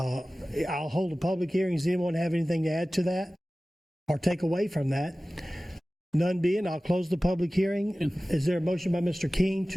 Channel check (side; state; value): both; normal; correlation 0.97